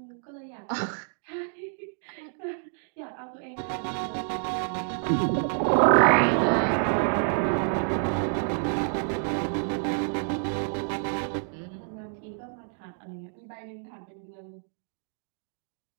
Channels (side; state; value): left; silent; 59 dB below the other